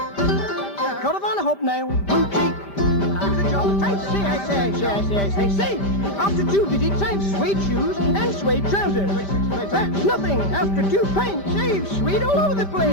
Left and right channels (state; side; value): late; right; 5.1 ms